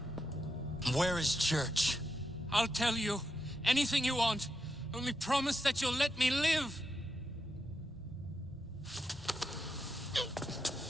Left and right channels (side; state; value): both; normal; correlation 0.84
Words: Where is Church? I'll tell you. Anything you want. Only promise that you'll let me live.